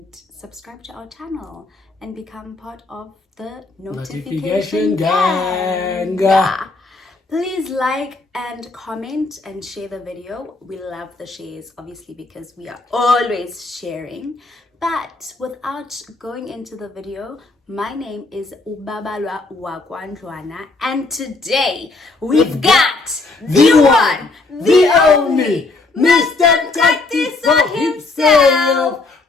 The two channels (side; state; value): right; quieter; 3.5 dB